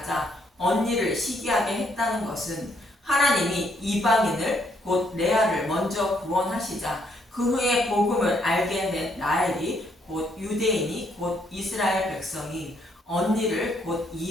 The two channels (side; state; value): both; normal; correlation 0.71